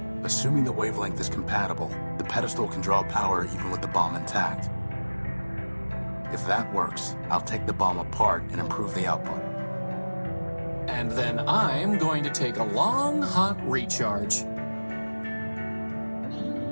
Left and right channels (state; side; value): inverted; both; correlation -1.00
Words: assuming the wavelength is compatible, the pedestal can draw power even with the bomb intact. If that works, I'll take the bomb apart and improve the output. And then I'm going to take a long, hot recharge.